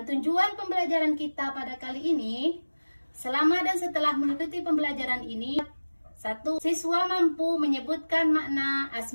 tujuan pembelajaran kita pada kali ini, selama dan setelah mengikuti pembelajaran ini, 1. Siswa mampu menyebutkan makna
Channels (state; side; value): inverted; both; correlation -1.00